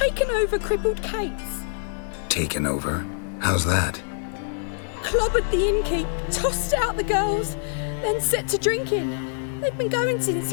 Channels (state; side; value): silent; right; digital silence